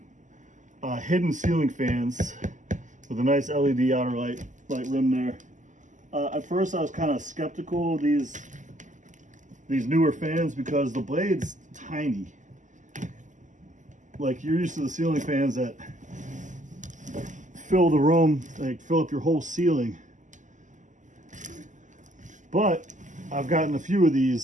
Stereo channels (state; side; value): late; left; 0.37 ms